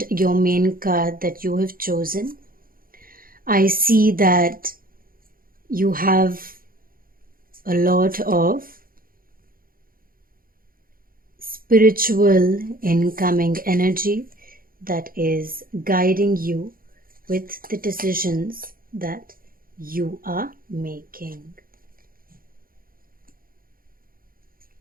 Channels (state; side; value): late; left; 0.42 ms